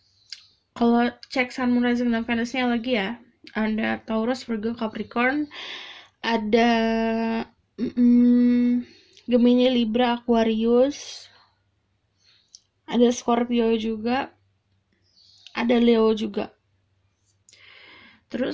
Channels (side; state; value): both; identical; correlation 1.00